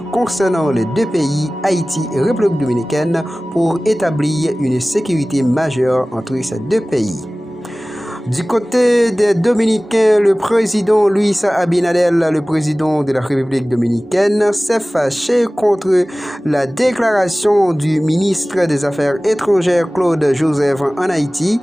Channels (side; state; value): both; normal; correlation 0.98